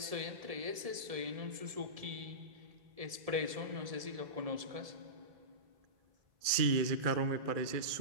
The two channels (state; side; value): late; left; 1.7 ms